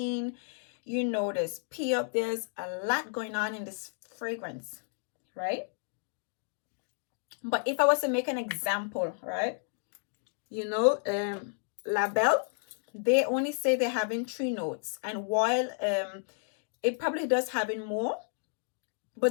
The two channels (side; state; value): right; silent; digital silence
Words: There's pear. There's a lot going on in this fragrance, right? But if I was to make an example, right? La Belle, they only say they're having 3 notes. And while it probably does having more,